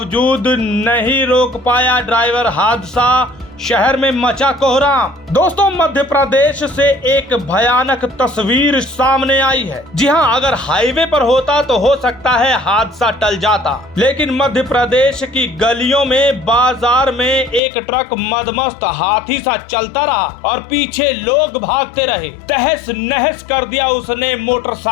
नहीं रोक पाया ड्राइवर, हादसा शहर में मचा कोहराम। दोस्तों, मध्य प्रदेश से एक भयानक तस्वीर सामने आई है। जी हां, अगर हाईवे पर होता तो हो सकता है हादसा टल जाता, लेकिन मध्य प्रदेश की गलियों में, बाजार में एक ट्रक मदमस्त हाथी सा चलता रहा और पीछे लोग भागते रहे। तहस नहस कर दिया उसने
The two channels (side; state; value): right; drops out; at 17.6 s